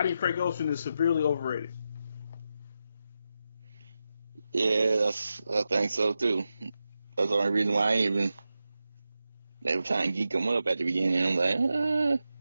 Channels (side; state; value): both; inverted; correlation -0.89